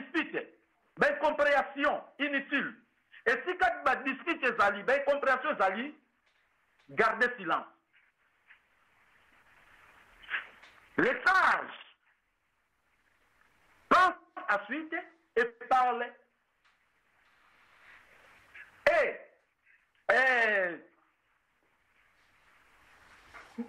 ba incompréhension inutile. Et si quand tu discutes tes alliés, ben compréhension tes alliés, gardez silence. Les sages pensent ensuite et parlent.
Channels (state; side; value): identical; both; correlation 1.00